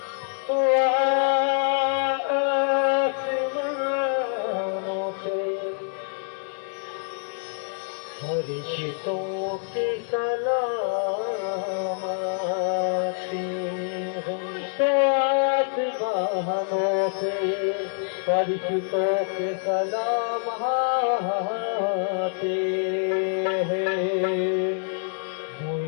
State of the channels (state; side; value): silent; right; digital silence